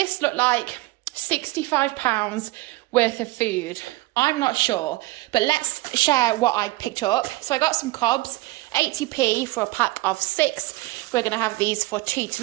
look like £65 worth of food? I'm not sure, but let's share what I picked up. So I got some cobs, 80p for a pack of 6. We're going to have these for tea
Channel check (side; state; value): left; quieter; 20.3 dB